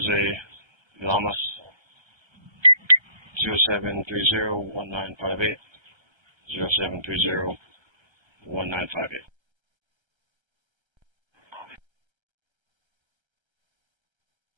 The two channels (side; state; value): left; late; 1.3 ms